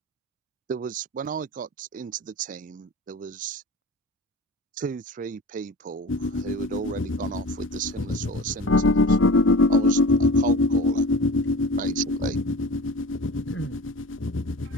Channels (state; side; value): normal; both; correlation 0.36